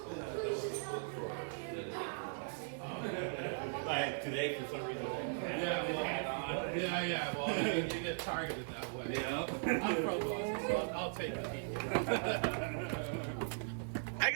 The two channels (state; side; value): silent; left; digital silence